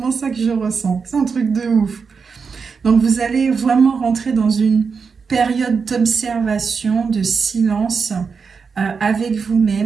ça que je ressens. C'est un truc de ouf. Donc, vous allez vraiment rentrer dans une période d'observation, de silence avec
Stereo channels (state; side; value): quieter; left; 5.5 dB